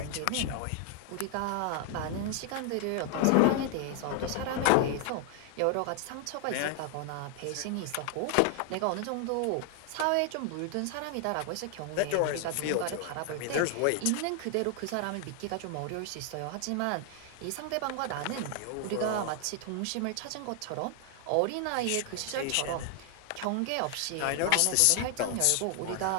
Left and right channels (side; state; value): both; different; correlation 0.00